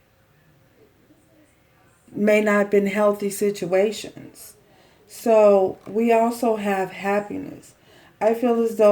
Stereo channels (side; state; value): both; identical; correlation 1.00